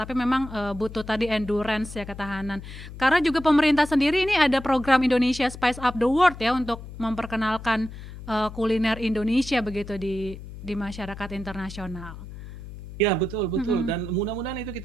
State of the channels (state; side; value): noise; left; hum, 13 dB below the sound